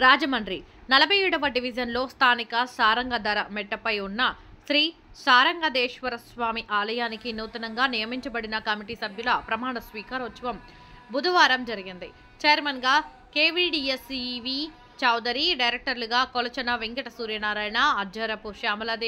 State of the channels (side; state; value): both; identical; correlation 1.00